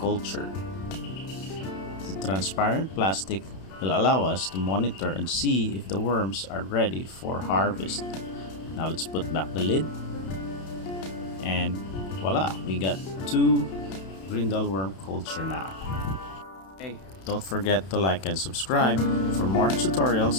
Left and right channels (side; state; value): right; late; 31 ms